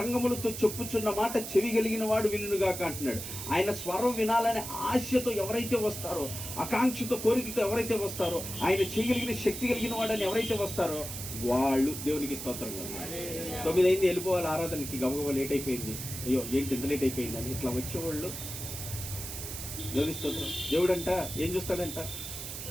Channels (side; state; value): right; noise; hiss, 7 dB below the sound